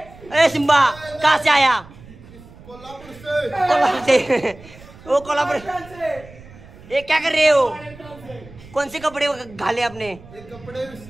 सिम्बा कहाँ से आया कोल्हापुर से वो कोल्हापुर ये क्या कर रहे हो कौन से कपड़े घाले आपने कपडे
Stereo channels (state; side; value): noise; right; rumble, 20 dB below the sound